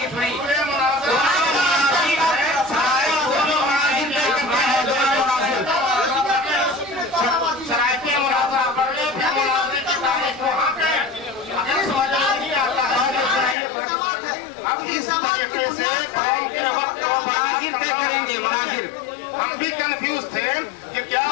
नहीं। शराइते मुनाजरा पढ़ने फिर मुनाजरे की तारीख वहाँ पे अगर समझ नहीं आता है अब इस तरीके से मुनाजिर तय करेंगे। मुनाजिर हम भी कंफ्यूज थे कि क्या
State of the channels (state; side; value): drops out; right; at 13.6 s